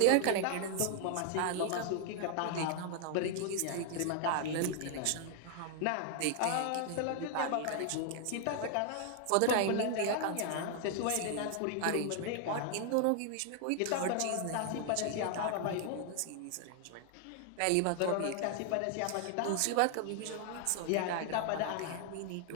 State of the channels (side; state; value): both; different; correlation 0.00